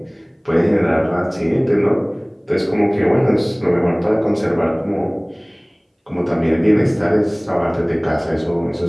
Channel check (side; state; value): both; identical; correlation 1.00